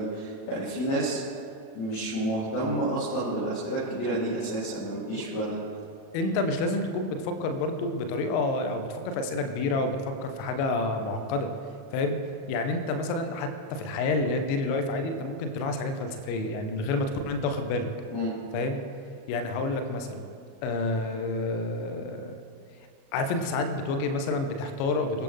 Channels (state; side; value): late; right; 37 ms